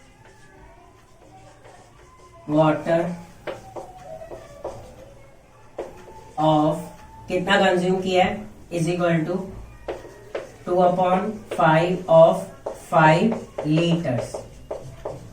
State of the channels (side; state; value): both; identical; correlation 1.00